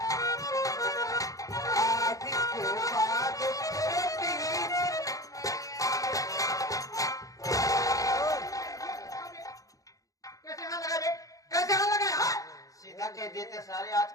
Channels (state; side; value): late; right; 0.17 ms